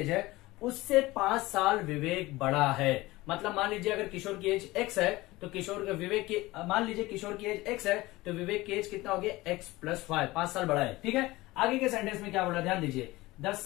है उससे 5 साल विवेक बड़ा है। मतलब मान लीजिए अगर किशोर की एज x है तो किशोर विवेक की, मान लीजिए किशोर की एज x है तो विवेक की एज कितना हो गया x प्लस 5 साल बड़ा है। ठीक है, आगे के सेंटेंस में क्या बोला ध्यान दीजिए, द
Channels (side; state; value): right; quieter; 19.6 dB